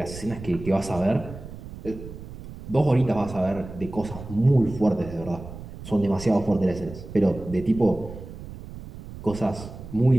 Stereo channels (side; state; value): right; noise; rumble, 13 dB below the sound